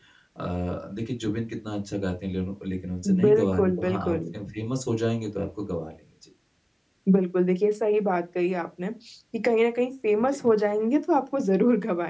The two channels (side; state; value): both; identical; correlation 1.00